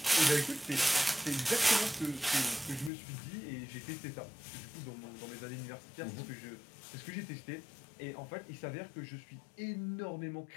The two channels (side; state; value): right; drops out; at 2.9 s